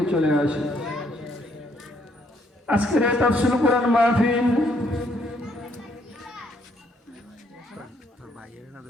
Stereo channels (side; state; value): both; normal; correlation 0.70